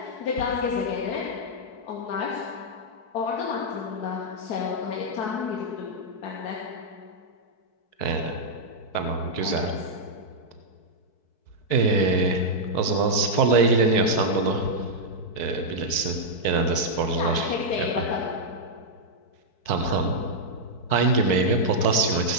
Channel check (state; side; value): late; right; 4.6 ms